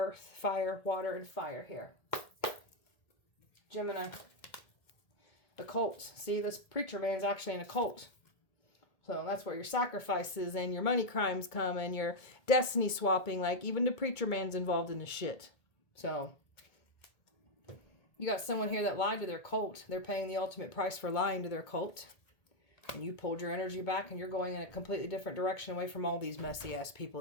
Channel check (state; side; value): late; right; 1.8 ms